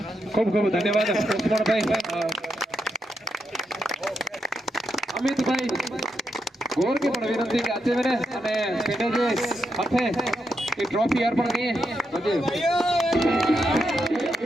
ખૂબ ખૂબ ધન્યવાદ લક્ષ્મણભાઈ. અમિતભાઈ ગોર કે પણ વિનંતી કે આજે મેને અને પેટે જે હાથે એ ટ્રોફી અર્પણ કરીએ બધે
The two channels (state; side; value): normal; both; correlation 0.83